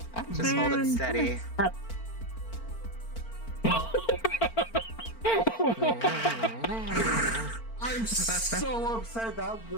Just hold it steady. I'm so upset that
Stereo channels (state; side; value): late; right; 4.4 ms